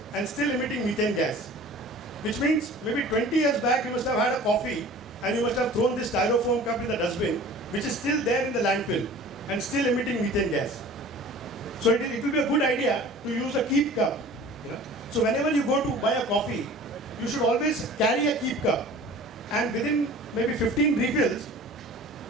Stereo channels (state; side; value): normal; both; correlation 0.44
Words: and still emitting methane gas. Which means maybe 20 years back you must have had a coffee and you must have thrown this styrofoam cup in the dustbin, which is still there in the landfill and still emitting methane gas. So it will be a good idea to use a keep cup. So whenever you go to buy a coffee, you should always carry a keep cup, and within maybe 15 refills,